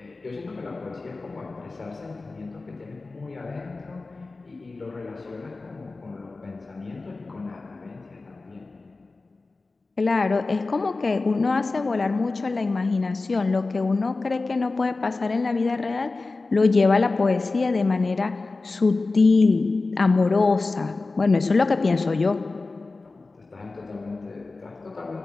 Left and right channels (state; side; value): quieter; right; 3.6 dB